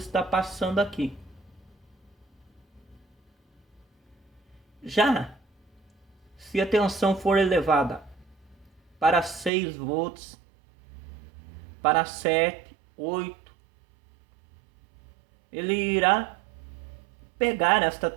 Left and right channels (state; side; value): drops out; left; at 9.5 s